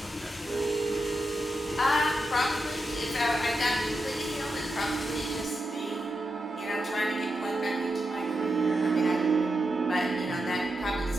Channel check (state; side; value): normal; both; correlation 0.87